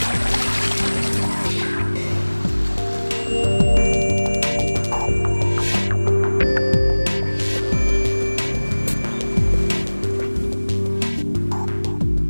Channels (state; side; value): inverted; both; correlation -1.00